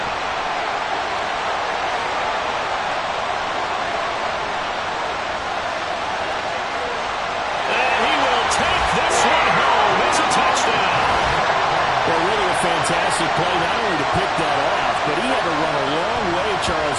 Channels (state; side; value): identical; both; correlation 1.00